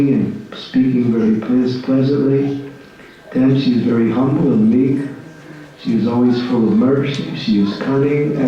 and speaking very pleasantly. 10, she is very humble and meek. She is always full of mercy. She is cunning,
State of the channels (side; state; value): both; identical; correlation 1.00